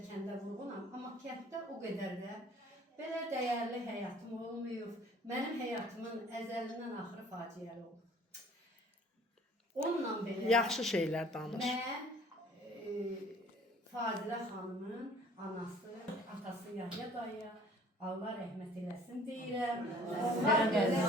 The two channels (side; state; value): both; normal; correlation 0.53